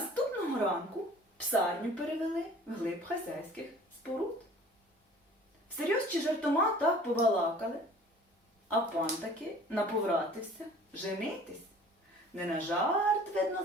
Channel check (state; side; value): normal; both; correlation 0.48